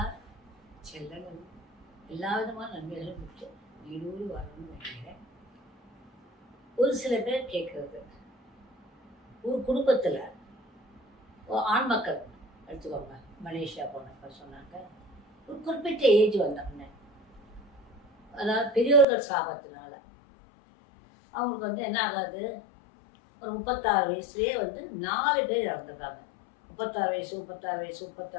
செல்லங்களும் எல்லா விதமான நன்மைகளும் பெற்று நீடூடி வரணும்னு நினைக்கிறேன். ஒரு சில பேர் கேட்குறது, ஒரு குடும்பத்தில் ஆண் மக்கள் எடுத்துக்கோங்க, மலேசியா போனப்ப சொன்னாங்க, ஒரு குறிப்பிட்ட ஏஜ் வந்தோடனே, அதாவது பெரியோர்கள் சாபத்தினால அவங்களுக்கு என்ன ஆகாது, ஒரு 36 வயசுலேயே 4 பேர் இறந்துருக்காங்க. 36 வயசு 36 வயசு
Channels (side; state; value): right; drops out; at 19.1 s